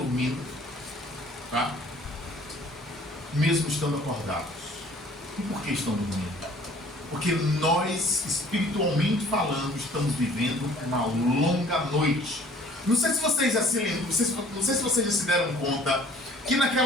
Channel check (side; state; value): both; normal; correlation 0.54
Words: tá? Mesmo estando acordados. E por que estão dormindo? Porque nós, espiritualmente falando, estamos vivendo uma longa noite. Não sei se vocês já se lembram, não sei se vocês já se deram conta que